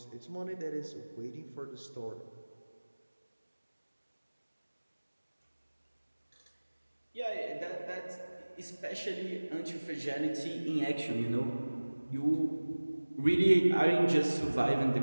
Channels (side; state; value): both; inverted; correlation -1.00